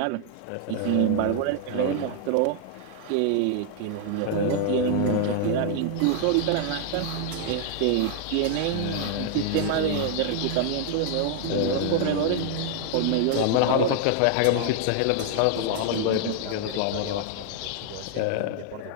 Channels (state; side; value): different; both; correlation 0.00